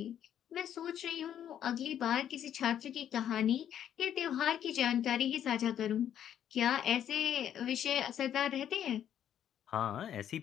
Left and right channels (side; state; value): right; quieter; 10.0 dB